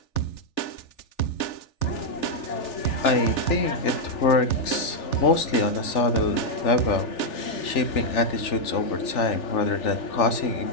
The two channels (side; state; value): right; late; 3.4 ms